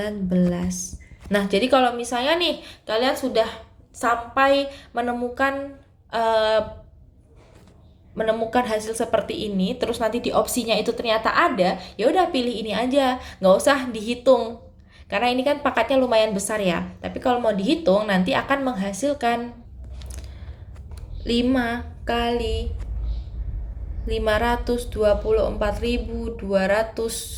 Nah, jadi kalau misalnya nih kalian sudah sampai menemukan hasil seperti ini, terus nanti di opsinya itu ternyata ada, ya udah pilih ini aja, nggak usah dihitung. Karena ini kan pangkatnya lumayan besar ya. Tapi kalau mau dihitung nanti akan menghasilkan 5 kali 288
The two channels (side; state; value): both; identical; correlation 1.00